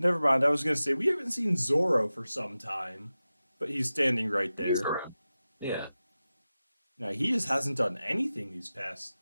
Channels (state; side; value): inverted; both; correlation -0.94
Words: mind. I was gonna say we haven't seen Zoro for some time, but he's standing right he's there. around. Yeah. Now he just hasn't done anything these past